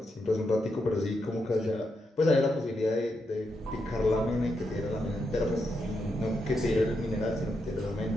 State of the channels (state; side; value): normal; both; correlation 0.83